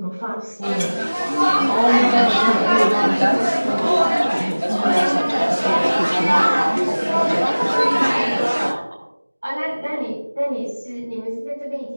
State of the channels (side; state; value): both; inverted; correlation -1.00